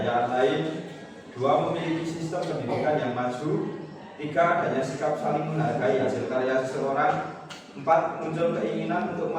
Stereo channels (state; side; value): identical; both; correlation 1.00